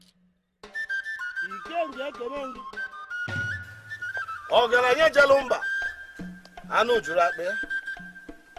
Ọgaranya Jalumba anụ juru akpa ya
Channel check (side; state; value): both; identical; correlation 1.00